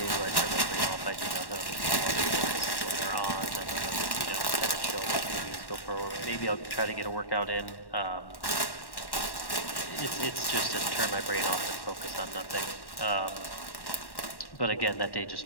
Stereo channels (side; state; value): right; late; 1.1 ms